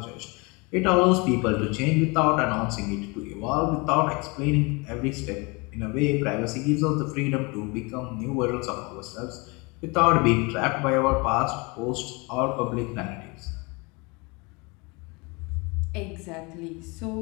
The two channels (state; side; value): quieter; right; 28.1 dB